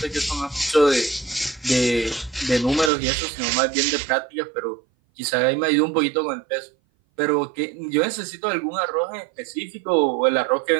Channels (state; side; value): drops out; left; at 2.9 s